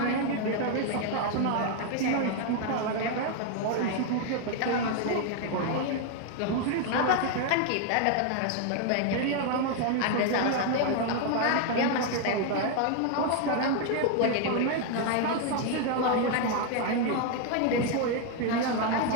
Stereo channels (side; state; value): both; different; correlation 0.01